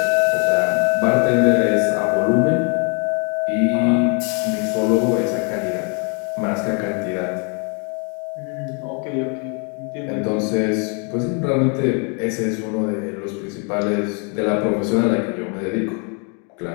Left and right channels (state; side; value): quieter; right; 37.6 dB